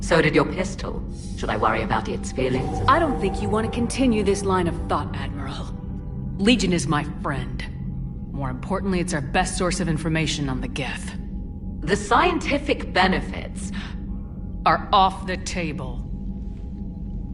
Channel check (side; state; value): both; identical; correlation 1.00